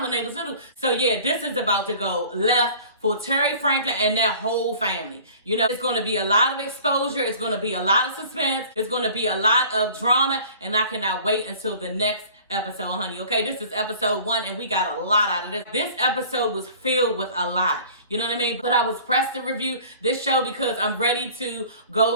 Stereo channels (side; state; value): both; inverted; correlation -0.47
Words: when they was little? So yeah, this is about to go left for Terry Franklin and their whole family. It's going to be a lot of exposure. It's going to be a lot of suspense. It's going to be a lot of drama, and I cannot wait until the next episode, honey. Okay, this is episode 1, and we got a lot out of this. This episode was filled with a lot. You know what I mean? But I was pressed to review this show because I'm ready to